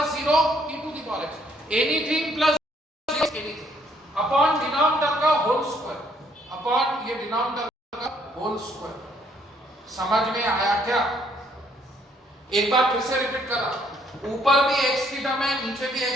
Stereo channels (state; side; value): normal; both; correlation 0.67